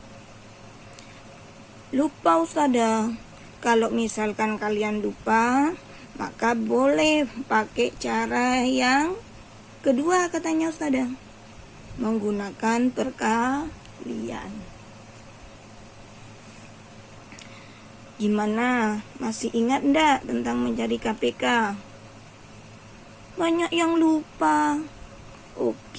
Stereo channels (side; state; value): both; identical; correlation 1.00